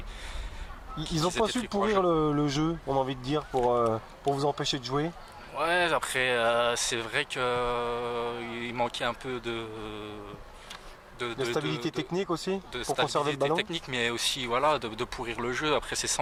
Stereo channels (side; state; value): both; identical; correlation 1.00